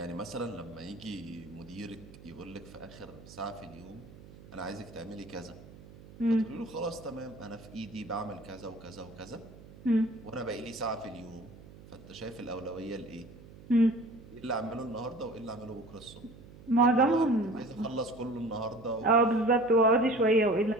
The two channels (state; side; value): noise; right; hum, 19 dB below the sound